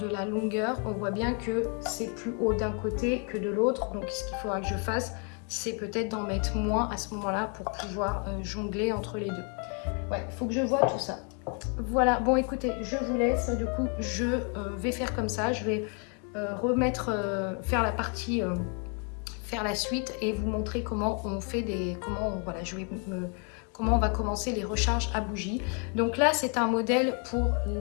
la longueur, on voit bien que c'est plus haut d'un côté que de l'autre. Donc ce qu'il faudra que je fasse, c'est peut-être d'en mettre moins à ce moment-là pour pouvoir jongler entre les deux. Ouais, il faut que je vois tout ça. Voilà, bon écoutez, je vous laisse. Du coup, je vais faire comme ça. Je vais faire la partie, faire la suite et vous montrer comment on fait voilà, comment on va commencer les recharges à bougie. Donc là, c'est un modèle pour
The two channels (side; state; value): right; quieter; 38.9 dB